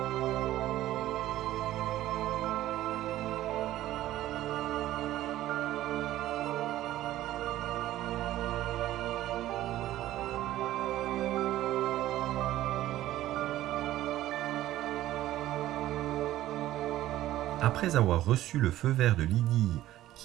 Après avoir reçu le feu vert de Lydie,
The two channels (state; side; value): quieter; left; 14.4 dB